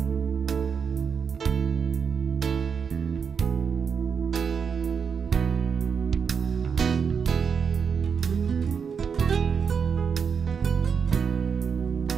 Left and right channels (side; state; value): left; quieter; 6.4 dB